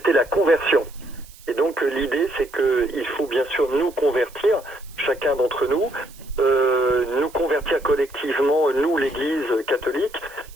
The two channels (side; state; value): right; noise; hiss, 23 dB below the sound